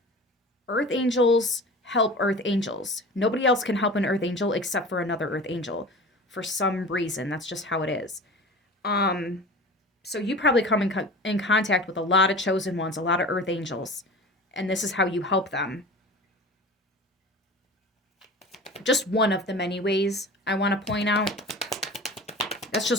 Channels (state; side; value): normal; both; correlation 0.37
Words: Earth angels help earth angels. Nobody else can help an earth angel except for another earth angel. For some reason, that's just how it is. So you probably come in contact with a lot of chosen ones, a lot of earth angels. And this is how you help them. Just one of the many ways I want to point out. That's